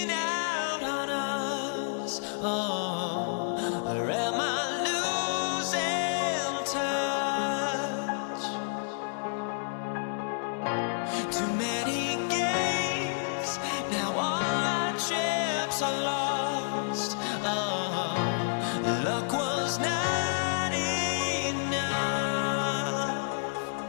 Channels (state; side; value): silent; right; digital silence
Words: out on us? Oh, or am I losing touch? Too many games, now all our chips are lost. Oh, luck was not enough.